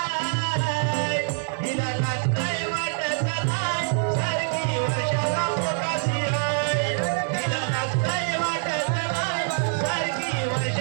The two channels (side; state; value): left; silent; 58 dB below the other